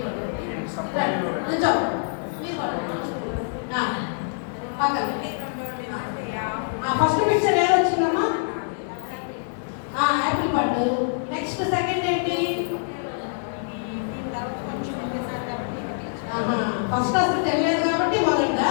ఫస్ట్ పిక్చర్ ఏది వచ్చిందమ్మా? యాపిల్ పండు. నెక్స్ట్ సెకండ్ ఏంటి? ఫస్ట్ అసలు తెలియదు కాబట్టి మొదట.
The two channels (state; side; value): silent; right; digital silence